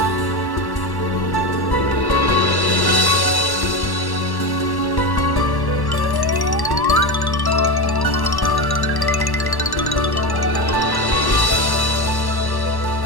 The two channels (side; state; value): right; late; 1.1 ms